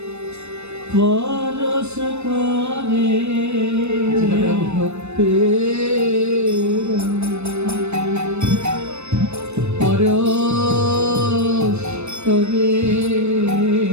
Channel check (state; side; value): late; left; 0.81 ms